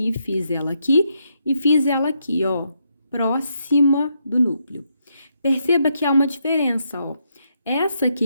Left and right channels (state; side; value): inverted; both; correlation -0.78